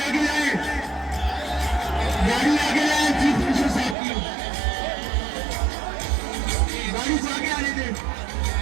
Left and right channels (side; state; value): left; drops out; at 4.0 s